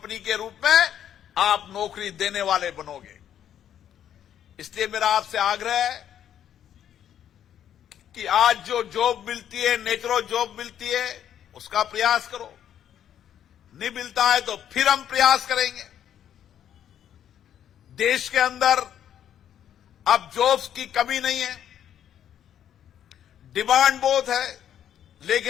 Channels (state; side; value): quieter; right; 10.0 dB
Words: के रूप में आप नौकरी देने वाले बनोगे। इसलिए मेरा आपसे आग्रह है कि आज जो जॉब मिलती है, नेचुरल जॉब मिलती है, उसका प्रयास करो। नहीं मिलता है तो फिर हम प्रयास करेंगे। देश के अंदर अब जॉब्स की कमी नहीं है, डिमांड बहुत है,